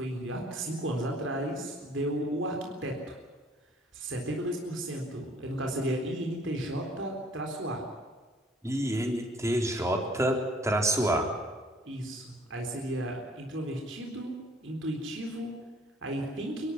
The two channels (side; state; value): both; normal; correlation 0.58